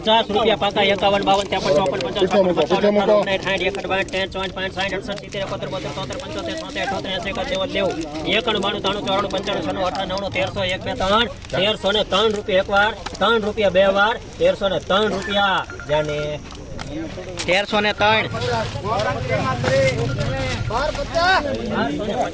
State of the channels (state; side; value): identical; both; correlation 1.00